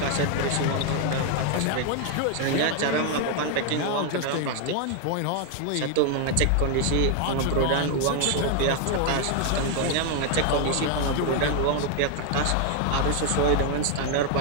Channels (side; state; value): both; different; correlation 0.00